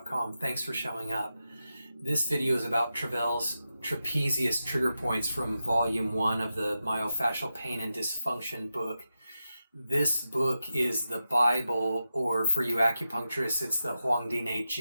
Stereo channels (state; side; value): inverted; both; correlation -0.90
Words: Thanks for showing up. This video is about Travell's Trapezius trigger points from Volume 1 of the Myofascial Pain and Dysfunction book. This book is the Bible, or for you acupuncturists, it's the Huangdi